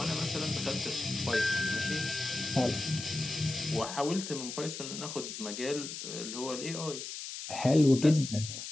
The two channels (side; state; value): left; noise; hiss, 8 dB below the sound